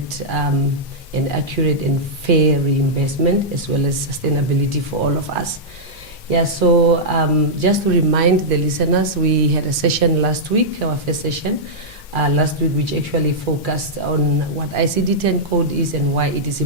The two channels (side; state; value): both; normal; correlation -0.10